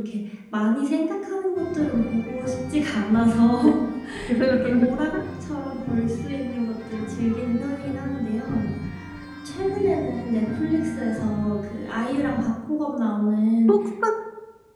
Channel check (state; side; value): identical; both; correlation 1.00